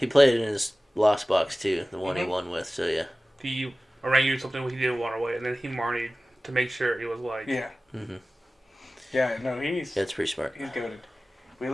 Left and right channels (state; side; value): normal; both; correlation 0.97